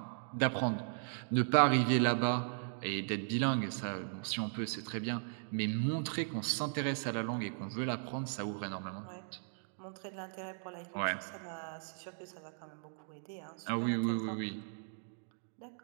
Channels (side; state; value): left; silent; digital silence